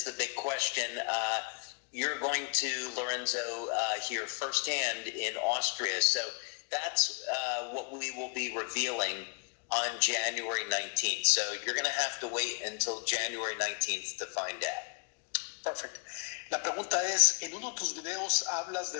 the big question. You're going to, Lorenzo, hear firsthand in Austria. So that's what we will be revealing on January 19th. So you're going to have to wait until January 19th to find out. Perfect. La pregunta es, en uno de tus videos hablas de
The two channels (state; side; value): quieter; right; 33.4 dB